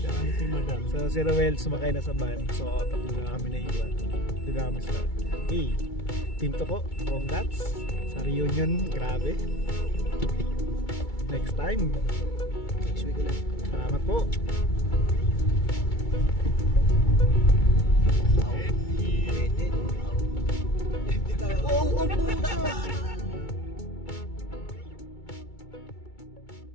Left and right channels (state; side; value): late; right; 2.3 ms